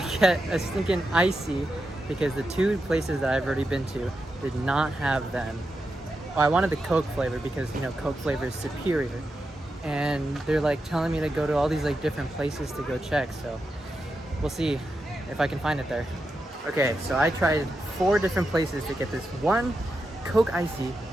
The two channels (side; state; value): both; normal; correlation 0.88